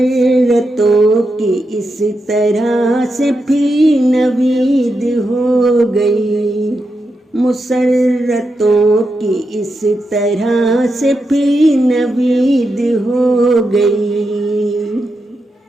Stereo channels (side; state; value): both; normal; correlation 0.86